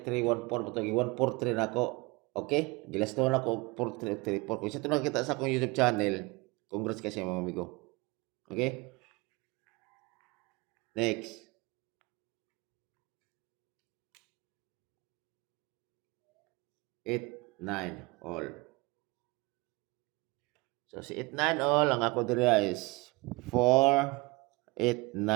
3-1-4 bato gi 1-4-3 nako. Okay, gilas to na ko 4-3-4 kung isa to nakita sa akong YouTube channel. Congrats kasi mga amigo. Okay, next 8-9 all. So si 8-9 all ang ako diri is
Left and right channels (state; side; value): quieter; left; 24.8 dB